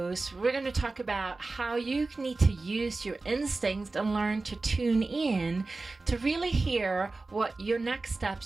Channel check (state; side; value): quieter; left; 3.5 dB